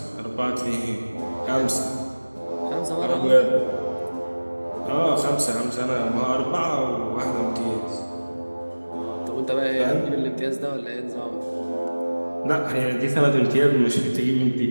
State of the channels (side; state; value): both; inverted; correlation -1.00